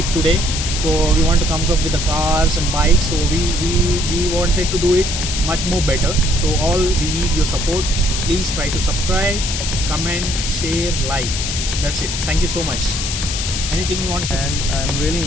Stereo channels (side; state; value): left; noise; hiss, 3 dB below the sound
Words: today. So we want to come up with the cars and bikes. So we wanted to do it much more better. So all we need your support. Please try to subscribe, comment, share, like. That's it. Thank you so much. Anything you want to say? And I'm really